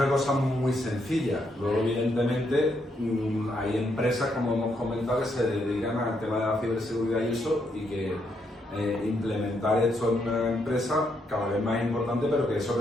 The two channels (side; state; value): both; normal; correlation 0.77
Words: cosa muy sencilla. Luego, evidentemente, hay empresas, como hemos comentado, que se dedican al tema de la ciberseguridad y eso, y que implementar esto en una empresa cada vez más importante, pero que